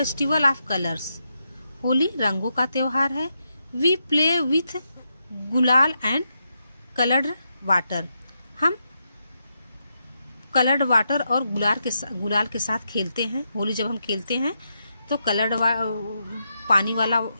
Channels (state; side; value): inverted; both; correlation -0.83